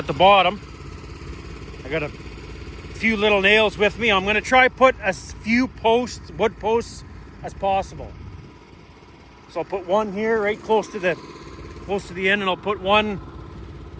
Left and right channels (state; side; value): identical; both; correlation 1.00